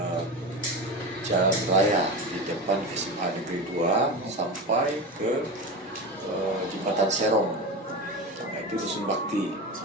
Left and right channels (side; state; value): both; normal; correlation 0.24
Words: Jalan Raya di depan SMA Negeri 2 sampai ke Jembatan Serong. Nah, itu Dusun Bakti.